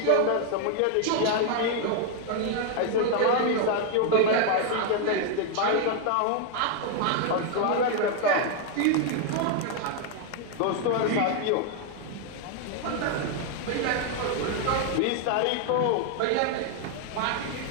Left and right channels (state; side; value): different; both; correlation 0.00